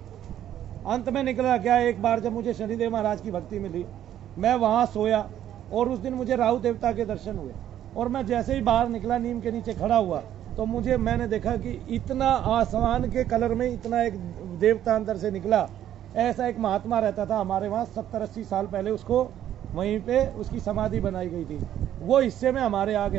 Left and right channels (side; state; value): left; quieter; 11.3 dB